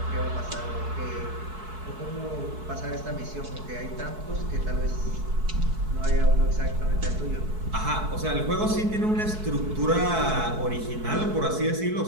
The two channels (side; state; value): left; late; 4.6 ms